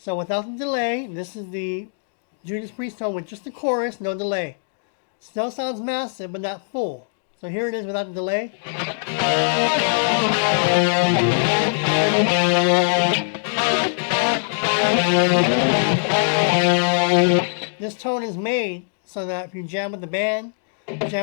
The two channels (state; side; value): silent; right; digital silence